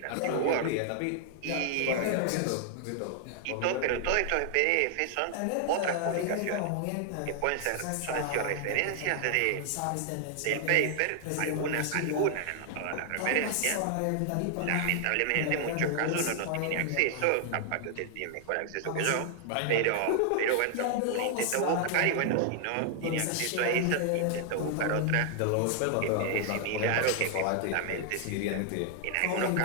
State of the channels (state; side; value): different; both; correlation 0.00